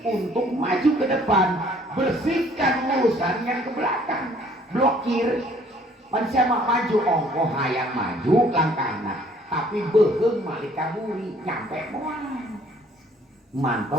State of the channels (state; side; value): normal; both; correlation 0.59